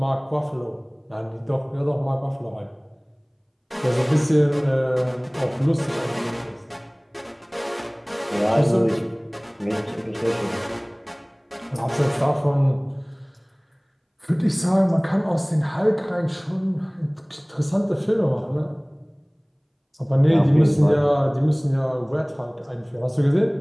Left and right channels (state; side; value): identical; both; correlation 1.00